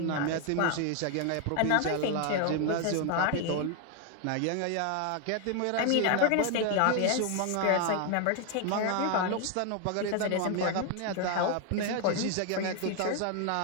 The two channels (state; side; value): different; both; correlation 0.01